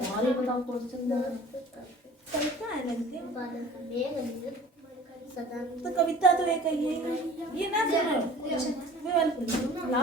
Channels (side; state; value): both; normal; correlation 0.45